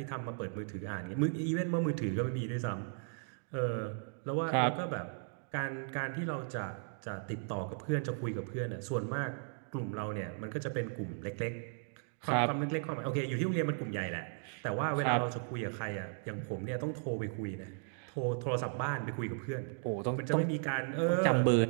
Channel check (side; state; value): left; silent; 54 dB below the other